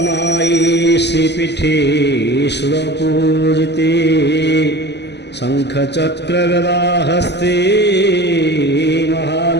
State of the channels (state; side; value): late; right; 0.50 ms